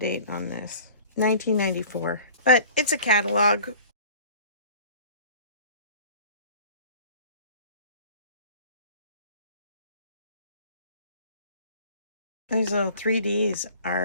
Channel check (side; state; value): both; inverted; correlation -0.45